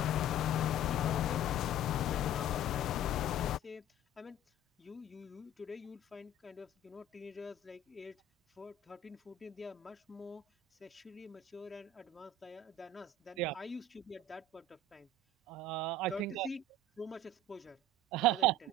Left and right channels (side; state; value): both; normal; correlation 0.42